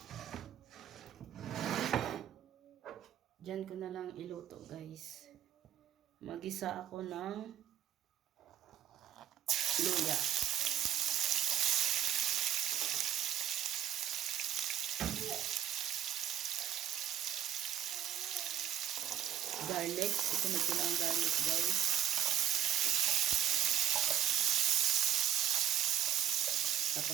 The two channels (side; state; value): left; quieter; 11.1 dB